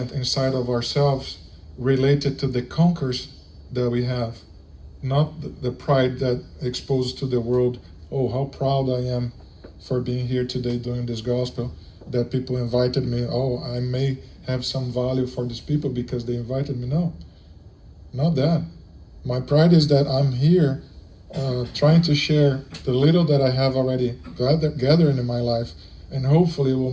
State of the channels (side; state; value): both; identical; correlation 1.00